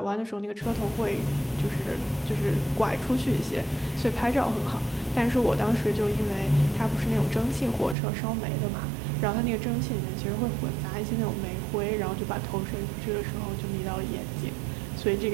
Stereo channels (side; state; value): left; drops out; at 8.0 s